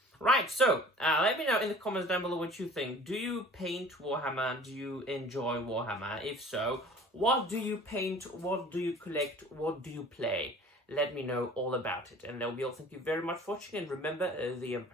Right, so let me know in the comments down below what you think. Do you paint Warhammer? Do you enjoy Warhammer? If so, what do you paint? What do you collect? What do you play? Let me know all about it. And that will be all. Thank you very much for watching. And remember, the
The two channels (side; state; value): both; normal; correlation 0.46